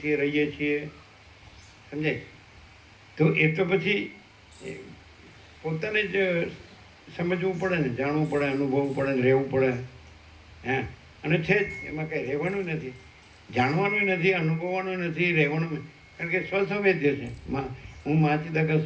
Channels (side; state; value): both; identical; correlation 1.00